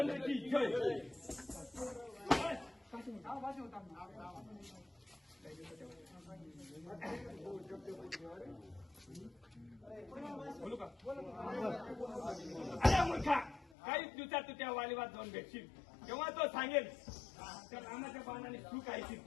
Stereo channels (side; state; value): right; drops out; at 13.7 s